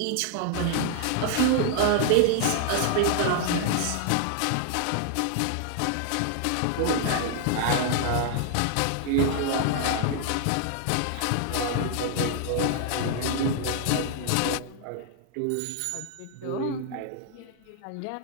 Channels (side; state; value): both; different; correlation 0.00